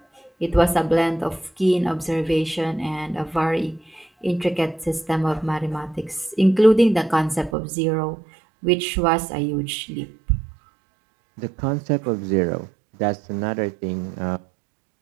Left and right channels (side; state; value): left; drops out; at 7.6 s